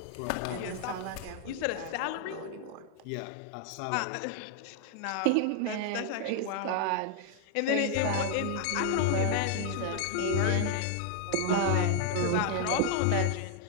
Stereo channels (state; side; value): different; both; correlation 0.00